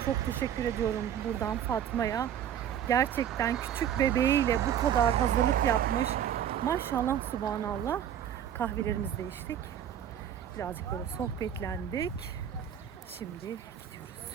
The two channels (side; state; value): left; quieter; 9.7 dB